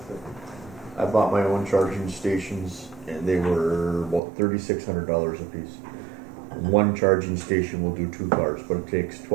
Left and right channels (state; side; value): drops out; left; at 4.2 s